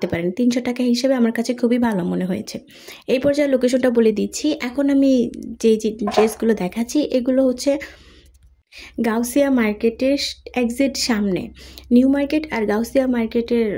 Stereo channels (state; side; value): identical; both; correlation 1.00